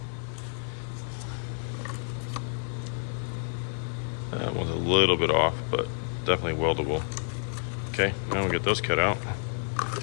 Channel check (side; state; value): right; silent; 58 dB below the other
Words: That one's a little bit off, but definitely weldable. Okay, now we'll get those cut out.